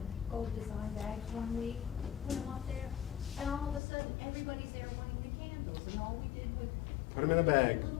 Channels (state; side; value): drops out; right; at 3.8 s